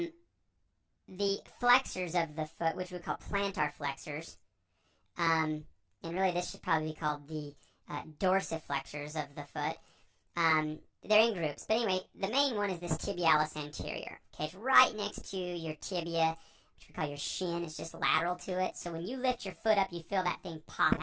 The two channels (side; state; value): both; identical; correlation 1.00